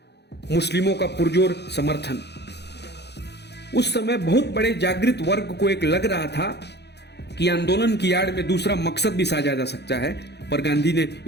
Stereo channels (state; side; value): late; right; 0.49 ms